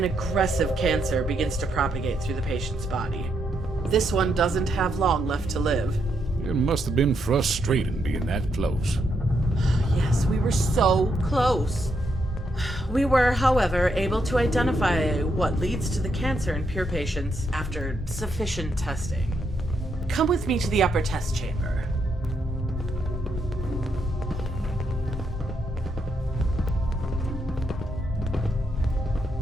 aggressive cancer begins to propagate through the patient's body. This one doesn't have long left to live. It must have been frustrating being that close. Yes, we were so close. We were, however, able to identify what leads to the cancer in pure patients after sufficient testing. Come with me to the upper test chamber.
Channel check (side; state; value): both; normal; correlation 0.78